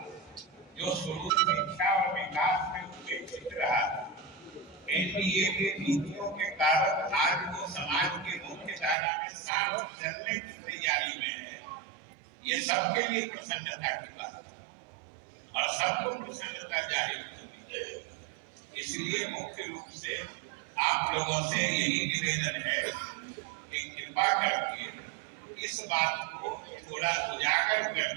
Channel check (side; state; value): left; drops out; at 9.0 s